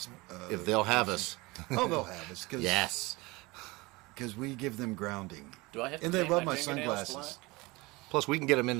If they'll have us. Oh, they'll have us. Cause, Yes. Because we give them grounding. Do I have to And they paint love my fingernails sunglasses. Plus, we can get them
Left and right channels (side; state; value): left; quieter; 23.4 dB